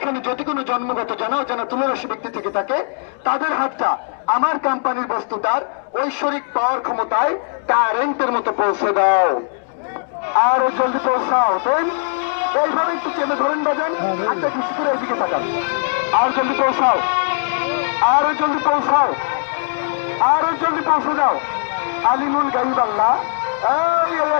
যদি কোনো জন্মগত জানা অজানা তুলারাশি ব্যক্তি থেকে থাকে, তাদের হাতটা আমার কোম্পানির বস্তুটার ঐশ্বরিক পাওয়ার ক্ষমতায় কারেন্টের মতো পৌঁছে দাও। আরো জলদি পৌঁছাও। দেন এইভাবে একটু চেপে ধরেন, বাজান, হাতটা ঠেসে ধরে এইদিকে তাকান। আর জলদি পৌঁছাও, আরো জলদি পৌঁছাও, আরো জলদি পৌঁছে যাও। আলিমুল গাইব আল্লাহ, এই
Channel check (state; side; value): silent; right; digital silence